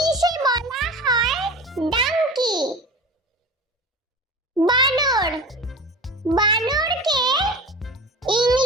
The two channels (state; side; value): normal; both; correlation 0.33